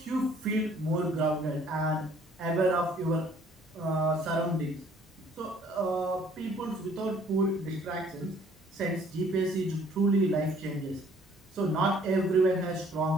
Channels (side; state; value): both; normal; correlation 0.59